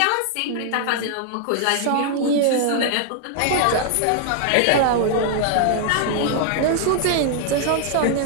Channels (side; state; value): both; different; correlation 0.00